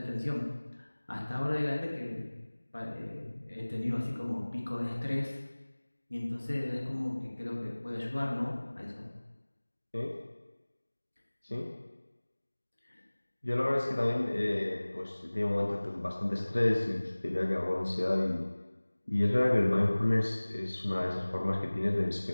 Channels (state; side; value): inverted; both; correlation -1.00